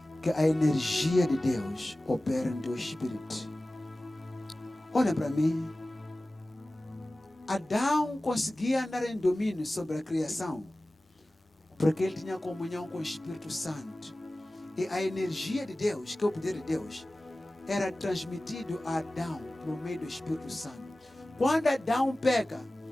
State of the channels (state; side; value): normal; both; correlation 0.97